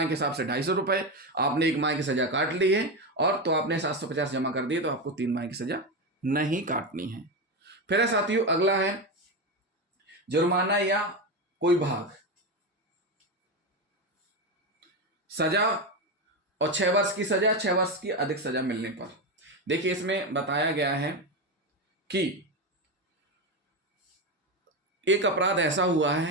के हिसाब से 250 रुपए। आपने 1 माह की सजा काट ली है और तो आपने 750 जमा कर दिए, तो आपको 3 माह की सजा नहीं काटनी है। फिर है साथियों, अगला है जुर्माना या कोई भाग। सजा और 6 वर्ष की सजा, 6 वर्ष की अधिक सजा मिलने पर। देखिए, इसमें बताया गया है कि एक अपराध ऐसा हुआ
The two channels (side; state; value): both; normal; correlation 0.14